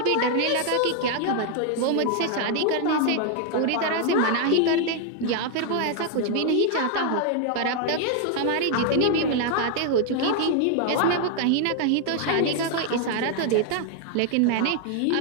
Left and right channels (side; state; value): both; different; correlation 0.00